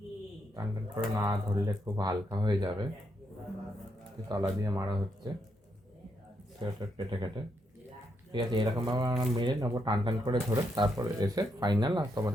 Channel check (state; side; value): normal; both; correlation 0.79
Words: টান টান করে না ধরলে খুব হালকা হয়ে যাবে, তলা দিয়ে মারা হচ্ছে সেলোটেপ কেটে কেটে। ঠিক আছে, এরকমভাবে আমরা মেরে নেবো টান টান করে ধরে, তারপরে এসে ফাইনাল আর